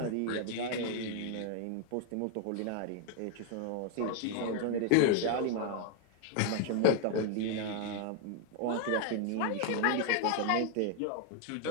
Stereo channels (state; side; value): different; both; correlation 0.00